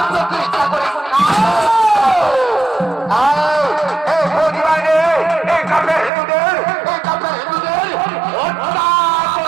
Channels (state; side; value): drops out; left; at 6.1 s